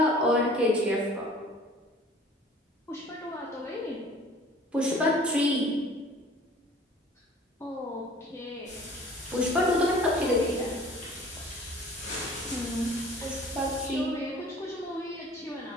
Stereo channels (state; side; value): normal; both; correlation 0.49